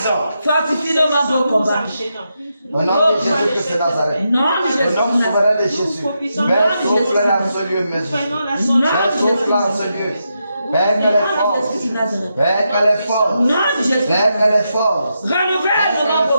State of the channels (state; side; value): inverted; both; correlation -0.84